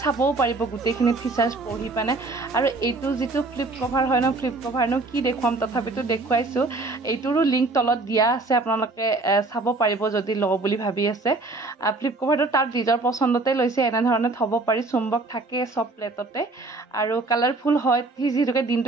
চাবও পাৰিব গোটেইখিনি ফিচাৰ্ছ পঢ়ি পানে আৰু এইটো যিটো ফ্লিপ কভাৰনো কি দেখুৱাম তথাপিতো দেখুৱাইছোঁ এইটোৰো লিংক তলত দিয়া আছে আপোনালোকে চাব পাৰিব যদি লওঁ বুলি ভাবি আছে ফ্লিপ কভাৰটো তাৰ নিজৰ পচন্দতে লৈছে এনেধৰণে থ'ব পাৰি চুম্বক থাকে চব প্লেটতে আৰু কালাৰফুল হয় সি যিহেতুকে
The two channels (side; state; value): left; quieter; 3.3 dB